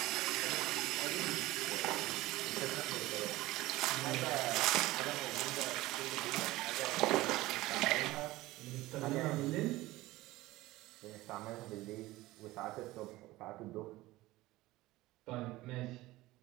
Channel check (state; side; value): quieter; left; 18.3 dB